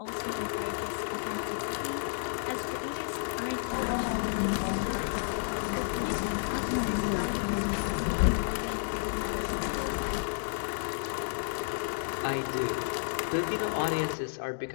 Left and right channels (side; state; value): right; silent; digital silence